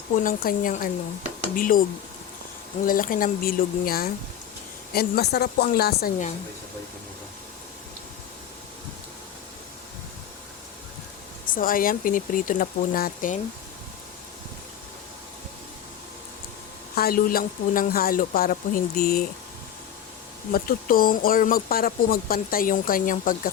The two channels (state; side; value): quieter; right; 9.6 dB